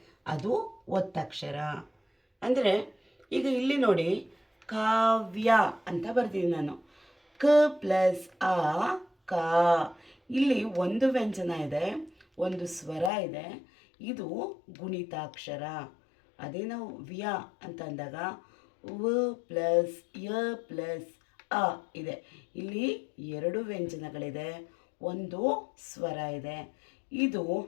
ಅದು ಒತ್ತಕ್ಷರ. ಅಂದರೆ ಈಗ ಇಲ್ಲಿ ನೋಡಿ, ಕಾವ್ಯ ಅಂತ ಬರ್ತೀನಿ ನಾನು. ಕ ಪ್ಲಸ್ ಆ ಕಾ. ಇಲ್ಲಿ ಒಂದು ವ್ಯಂಜನ ಇದೆ, ಒಂದು ಸ್ವರ ಇದೆ, ಇದು ಗುಣಿತಾಕ್ಷರ. ಅದೇ ನಾವು ವ್ಯ ಅಂತ ಅಂದಾಗ ವ ಪ್ಲಸ್ ಯ ಪ್ಲಸ್ ಅ ಇದೆ. ಇಲ್ಲಿ ಎರಡು ವ್ಯಂಜನಗಳಿದೆ, ಒಂದು ಸ್ವರ ಇದೆ, ಇದು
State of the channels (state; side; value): drops out; right; at 13.1 s